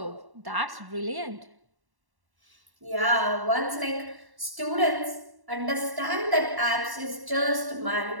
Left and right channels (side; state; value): left; late; 1.1 ms